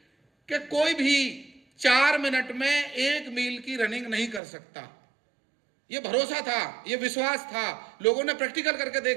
कि कोई भी 4 मिनट में 1 मील की रनिंग नहीं कर सकता। ये भरोसा था, ये विश्वास था। लोगों ने प्रैक्टिकल करके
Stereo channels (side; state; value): left; drops out; at 4.4 s